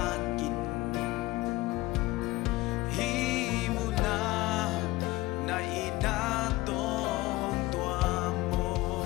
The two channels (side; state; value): right; quieter; 19.2 dB